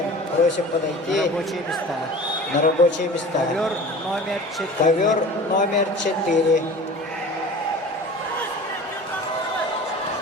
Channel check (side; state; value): both; normal; correlation 0.39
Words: просим подойти на рабочие места. Ковер номер 4.